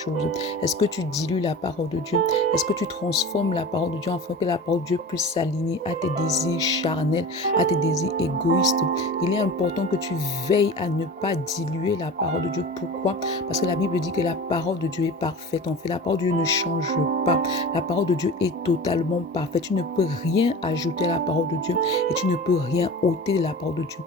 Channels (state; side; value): normal; both; correlation 0.34